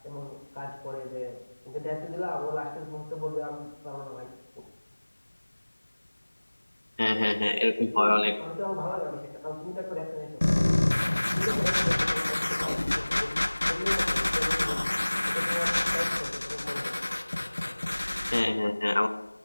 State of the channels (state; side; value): inverted; both; correlation -1.00